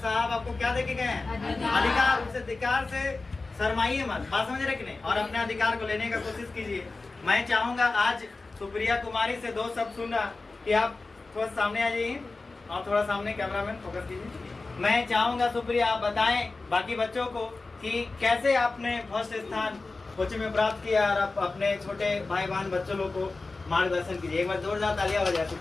आपको क्या दे के गए हैं? अधिकार। उस अधिकार से शर्माइए मत, बात समझ रहे कि नहीं? और अपने अधिकार को लेने का कोशिश कीजिए। मैं चाहूंगा आज सुप्रिया कुमारी से 2 शब्द सुनना, कि आप थोड़ा सामने आ जाइए और थोड़ा सामने कैमरामैन फोकस कीजिए। मैं चाहूंगा सुप्रिया आप बताएं बाकी बच्चों को कि कैसे आपने फर्स्ट स्थान कोचिंग में प्राप्त किया, और आप अपने छोटे भाई बहन बच्चों लोग को मार्गदर्शन कीजिए। एक बार जोरदार तालियां हो जाए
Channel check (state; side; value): quieter; right; 3.6 dB